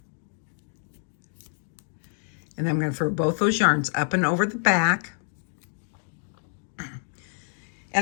And then I'm going to throw both those yarns up and over the back.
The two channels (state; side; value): silent; right; digital silence